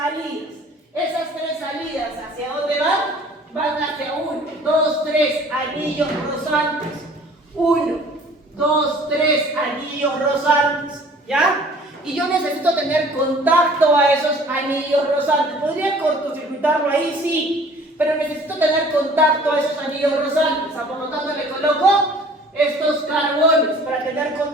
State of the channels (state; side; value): normal; both; correlation 0.51